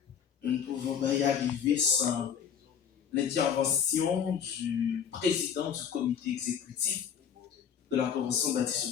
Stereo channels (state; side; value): quieter; right; 7.9 dB